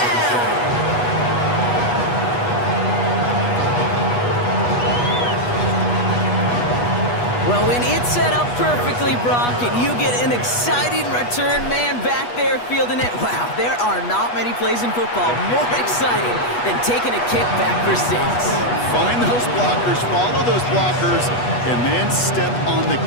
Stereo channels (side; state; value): right; late; 8.2 ms